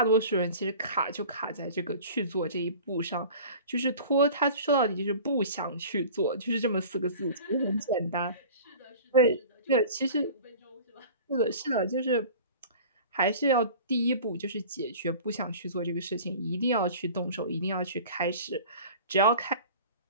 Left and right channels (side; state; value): both; inverted; correlation -0.41